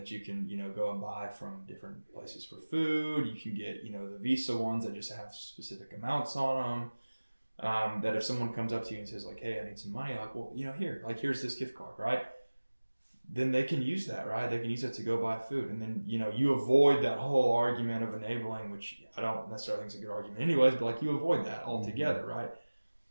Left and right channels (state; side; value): inverted; both; correlation -1.00